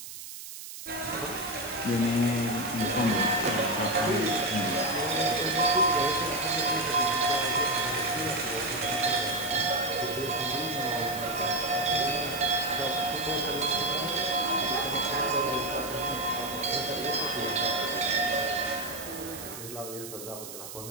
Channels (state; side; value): noise; right; hiss, 11 dB below the sound